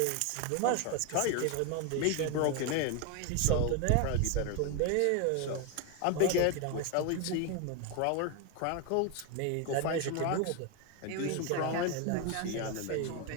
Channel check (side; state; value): both; different; correlation 0.01